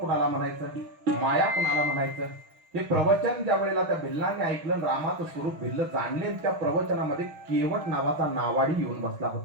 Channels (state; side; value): late; left; 6.4 ms